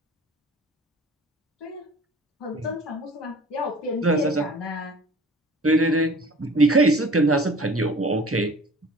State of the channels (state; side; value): normal; both; correlation 0.46